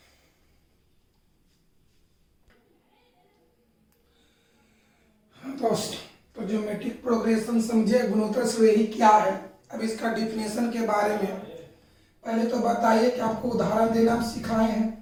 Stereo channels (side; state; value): both; identical; correlation 1.00